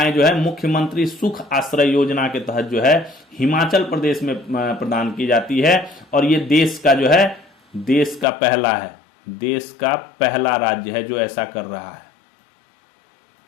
जो है मुख्यमंत्री सुख आश्रय योजना के तहत जो है हिमाचल प्रदेश में प्रदान की जाती है। और ये देश का जो है देश का पहला है, देश का पहला राज्य है जो ऐसा कर रहा है,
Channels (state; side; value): drops out; right; at 8.2 s